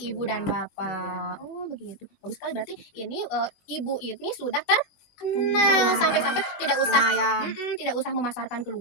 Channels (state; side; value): late; right; 20 ms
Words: dan bapak. Oh, begitu. Bagus sekali berarti ini ibu ini sudah terkenal sampai-sampai tidak usah Lumayan. tidak usah memasarkan